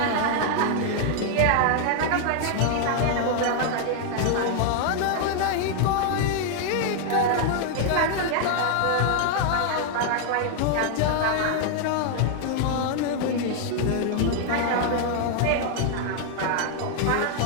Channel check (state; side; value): different; both; correlation 0.00